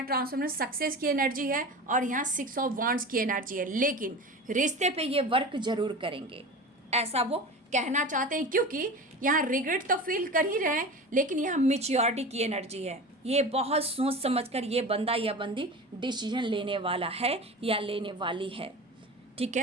ट्रांसफॉर्मर सक्सेस की एनर्जी है और यहाँ 6 ऑफ वांड्स की एनर्जी है। लेकिन रिश्ते पे ये वर्क जरूर करेंगे, ऐसा वो कहना चाहते हैं, क्योंकि यहाँ रिग्रेट तो फील कर ही रहे हैं, लेकिन यहाँ मैच्योरिटी की एनर्जी है। ये बहुत सोच समझकर ये बंदा या बंदी डिसीजन लेने वाला है या लेने वाली है, ठीक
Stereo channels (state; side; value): normal; both; correlation 0.32